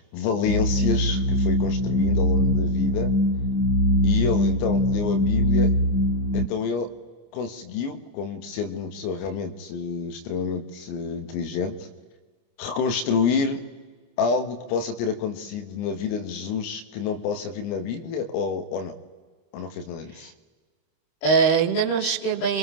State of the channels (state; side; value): late; right; 26 ms